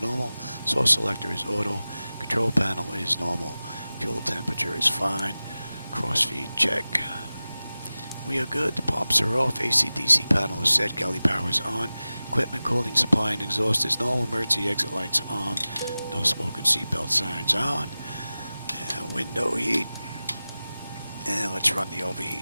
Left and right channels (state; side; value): inverted; both; correlation -0.96